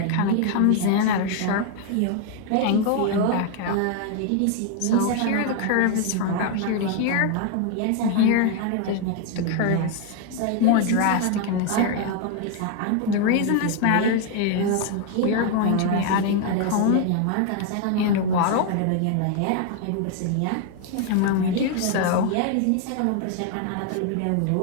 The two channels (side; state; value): both; different; correlation 0.01